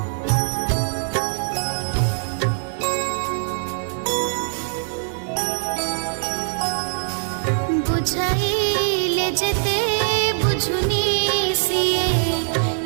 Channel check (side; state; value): left; silent; digital silence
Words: बुझाइले जेते बुझुनी सिए